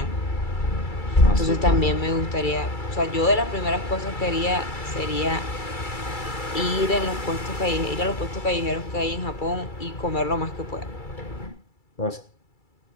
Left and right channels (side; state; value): right; late; 2.3 ms